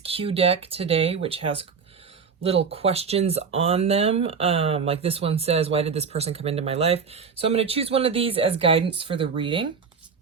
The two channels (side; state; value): left; quieter; 5.8 dB